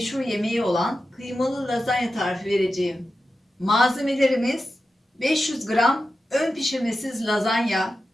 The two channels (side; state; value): both; normal; correlation 0.92